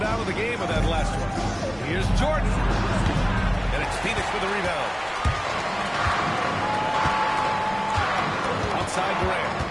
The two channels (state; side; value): identical; both; correlation 1.00